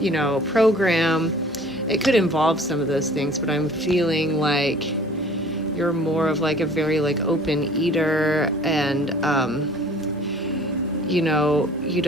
program. It could involve some of those things, but I'm feeling like you're more of like a very like open eater, and you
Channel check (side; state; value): both; normal; correlation 0.50